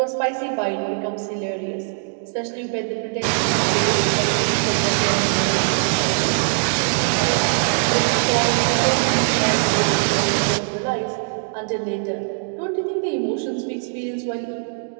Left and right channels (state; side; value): silent; left; digital silence